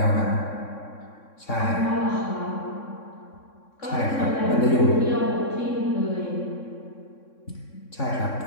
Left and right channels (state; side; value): late; right; 3.6 ms